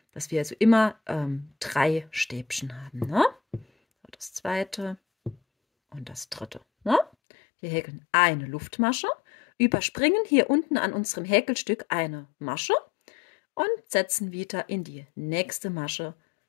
dass wir also immer 3 Stäbchen haben. Ne? So, das zweite und das dritte. Ne? Wir häkeln eine Luftmasche, überspringen hier unten an unserem Häkelstück eine Masche und setzen wieder in die nächste Masche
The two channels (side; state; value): right; drops out; at 7.1 s